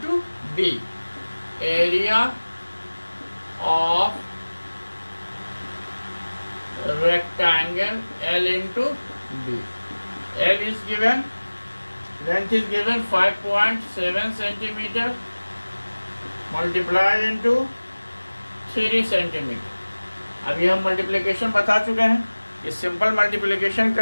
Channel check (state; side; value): inverted; both; correlation -1.00